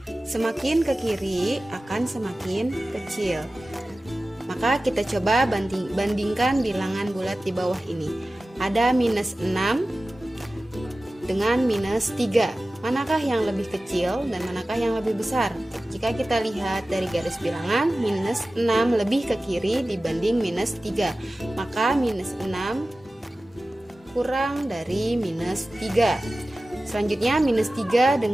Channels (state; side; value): normal; both; correlation 0.96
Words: Semakin ke kiri akan semakin kecil. Maka kita coba bandingkan bilangan bulat di bawah ini. Ada minus 6 dengan minus 3. Manakah yang lebih kecil dan manakah yang lebih besar? Jika kita lihat dari garis bilangan, minus 6 lebih ke kiri dibanding minus 3. Maka minus 6 kurang dari minus 3. Selanjutnya minus 3